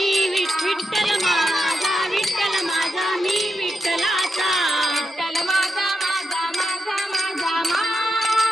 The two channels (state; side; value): normal; both; correlation 0.86